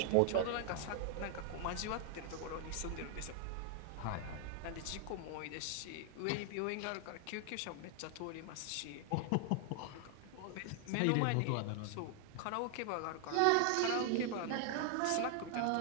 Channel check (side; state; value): both; different; correlation 0.00